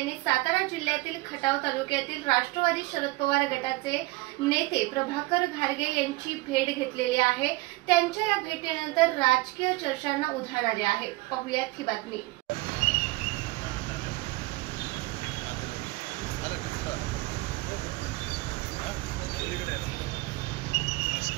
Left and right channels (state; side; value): quieter; left; 21.9 dB